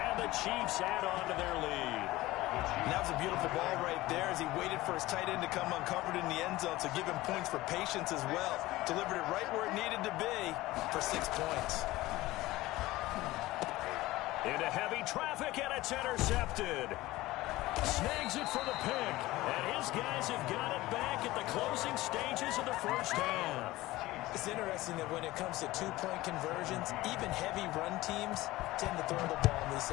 the Chiefs add on to their lead. And that was a beautiful ball right there as he waited for his tight end to come uncovered in the end zone to give him points for patience as well. Delivered it right where it needed to be for 6 points. Into heavy traffic, and it's intercepted. Snags it for the pick, and his guys have got it back at the closing stages of the first half. It's interesting that when it comes to two-point conversions, even heavy run teams tend to throw the ball in these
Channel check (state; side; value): quieter; right; 18.1 dB